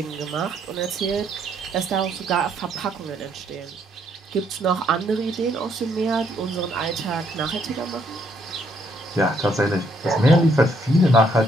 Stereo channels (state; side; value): normal; both; correlation 0.70